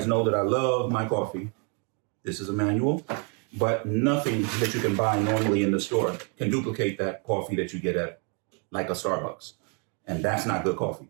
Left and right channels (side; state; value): left; quieter; 37.2 dB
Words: know that I love my coffee. This is a manual, but nothing that you can buy normally in the store can duplicate that coffee that you get at like a Starbucks. And that's not good coffee,